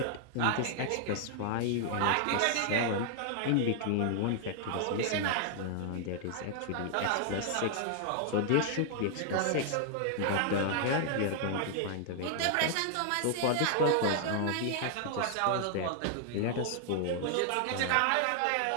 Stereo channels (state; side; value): different; both; correlation 0.00